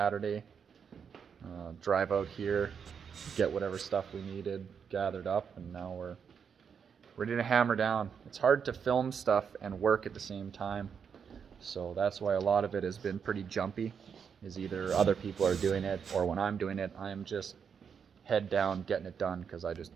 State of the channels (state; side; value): quieter; left; 6.9 dB